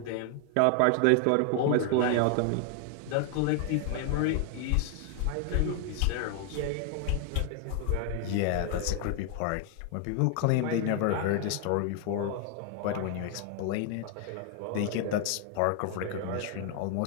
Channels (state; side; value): different; both; correlation 0.00